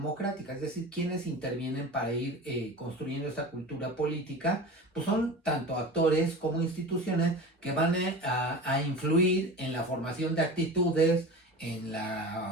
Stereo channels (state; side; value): normal; both; correlation 0.32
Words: Es decir, ¿quiénes intervienen para ir construyendo esta cultura política? Pues son tanto actores como instituciones que van a influir en la formación de actitudes, en